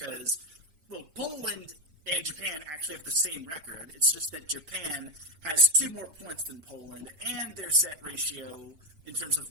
well, Poland and Japan actually have the same record. It's just that Japan has 2 more points than Poland, and their set ratio in terms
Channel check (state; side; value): late; left; 6.4 ms